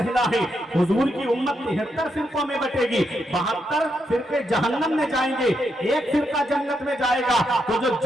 है? हुजूर की उम्मत 73 फिरकों में बटेगी, 72 फिरके जहन्नम में जाएंगे, एक फिरका जन्नत में जाएगा। तो जो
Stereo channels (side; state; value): both; normal; correlation 0.81